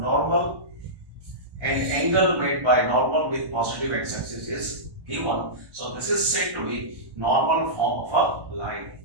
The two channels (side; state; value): left; late; 1.1 ms